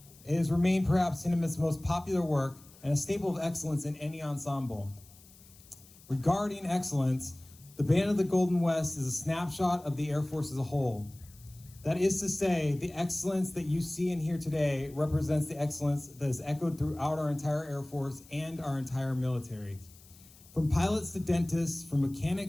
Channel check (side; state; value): left; noise; hiss, 24 dB below the sound